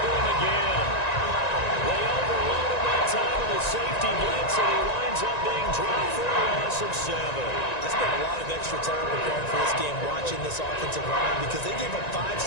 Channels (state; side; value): late; right; 1.9 ms